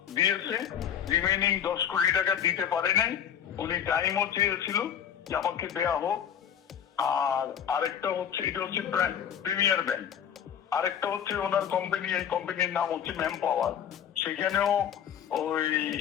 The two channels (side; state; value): right; quieter; 8.9 dB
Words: দিয়েছে, রিমেইনিং 10 কোটি টাকা দিতে পারে নাই। উনি টাইমও চেয়েছিল যে আমাকে দেয়া হোক। আর আরেকটা হচ্ছে, এটা হচ্ছে প্রিমিয়ার ব্যাংক। আরেকটা হচ্ছে ওনার কোম্পানি, এই কোম্পানির নাম হচ্ছে ম্যান পাওয়ার। সেখানেও ওই